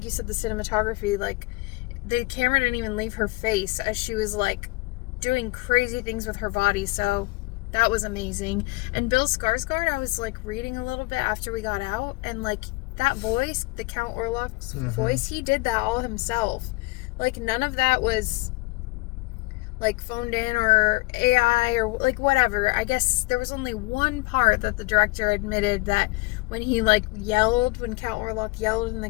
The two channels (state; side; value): quieter; right; 23.9 dB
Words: you said, the cinematography, like, the camera didn't even leave her face as she was, like, doing crazy things with her body, so that was amazing. And Bill Skarsgård, I was, like, reading a little bit after we got out, and, like, that voice, the Count Orlok's voice, he did that all himself. Like, none of that was, like, phoned in or AI or, like, whatever. I guess there was only one part that the director admitted that when he, like, yelled, when Count Orlok yelled in the